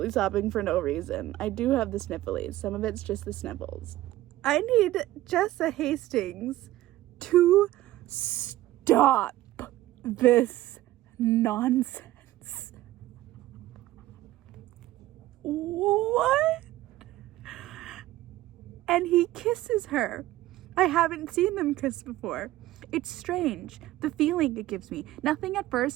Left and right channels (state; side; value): quieter; left; 15.8 dB